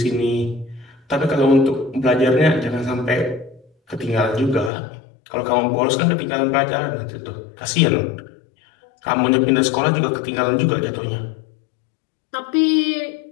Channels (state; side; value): drops out; right; at 4.7 s